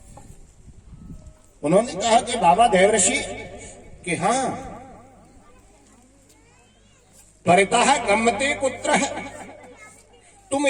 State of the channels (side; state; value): both; identical; correlation 1.00